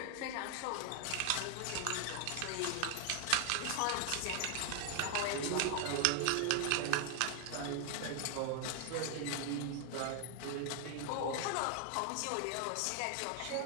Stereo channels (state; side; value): different; both; correlation 0.00